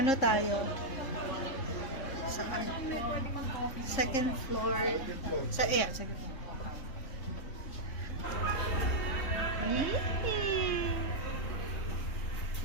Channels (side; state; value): right; late; 3.6 ms